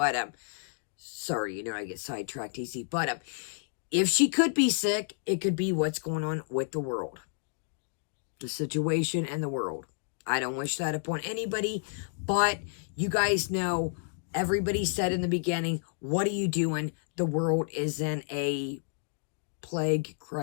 sorry, you know, I get sidetracked easy. But, if she could be sick, it could be what's going on with the world. The situation and the world. I don't wish that upon anybody, but you guys know, everybody said in the beginning, what are you doing? The world is in a plague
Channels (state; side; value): silent; right; digital silence